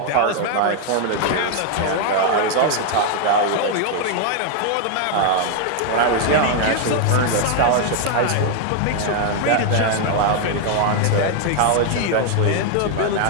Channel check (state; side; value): different; both; correlation 0.00